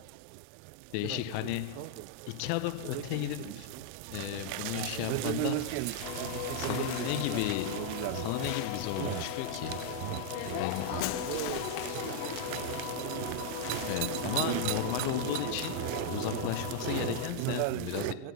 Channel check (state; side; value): different; both; correlation -0.01